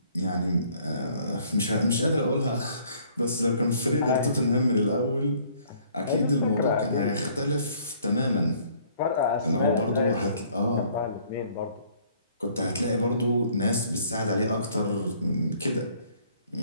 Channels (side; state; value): both; inverted; correlation -0.60